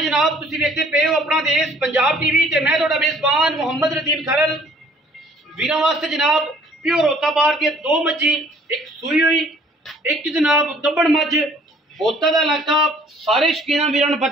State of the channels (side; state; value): both; normal; correlation 0.57